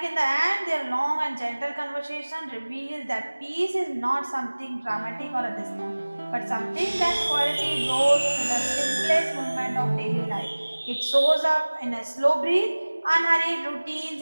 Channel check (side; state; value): both; inverted; correlation -1.00